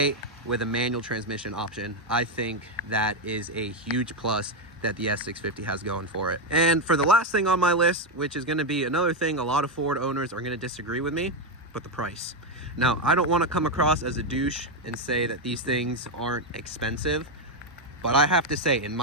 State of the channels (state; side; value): normal; both; correlation 0.05